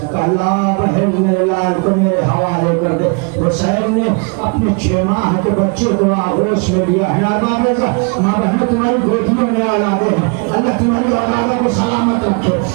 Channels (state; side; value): quieter; left; 34.4 dB